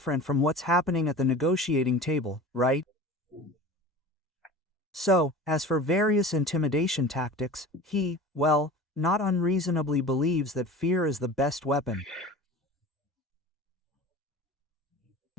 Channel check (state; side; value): normal; both; correlation 0.37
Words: from what's happening at the negotiating table, right? So, as for various intimidation tactics, he, well, not unreasonably believes that fear is the best weapon.